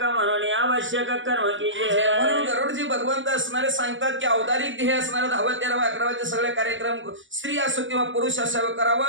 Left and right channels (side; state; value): left; late; 0.56 ms